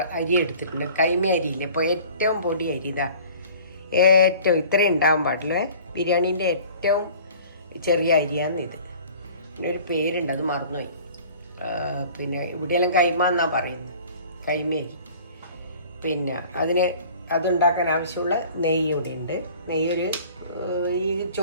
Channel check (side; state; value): both; inverted; correlation -0.47